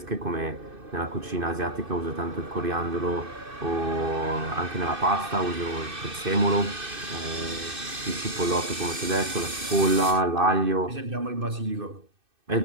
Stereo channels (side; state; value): left; late; 2.6 ms